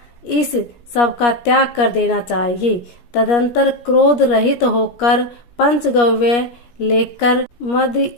इस सब का त्याग कर देना चाहिए। तदंतर क्रोध रहित होकर पंचगव्य लेकर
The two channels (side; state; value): right; late; 17 ms